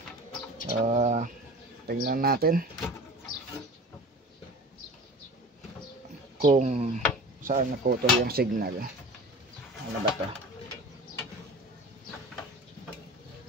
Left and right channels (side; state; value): both; normal; correlation 0.38